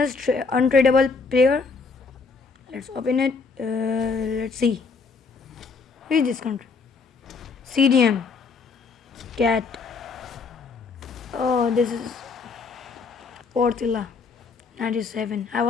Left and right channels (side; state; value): right; quieter; 4.7 dB